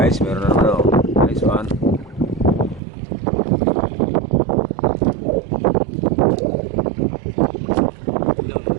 meron na naman oh. Nice one.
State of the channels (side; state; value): left; drops out; at 2.8 s